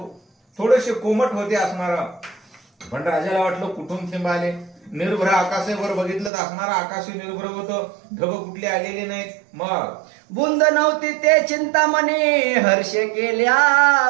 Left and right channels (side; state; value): left; drops out; at 6.3 s